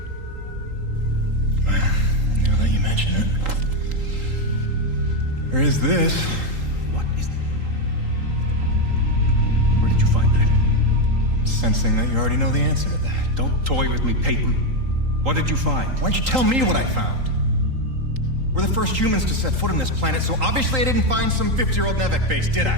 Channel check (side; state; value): left; late; 3.8 ms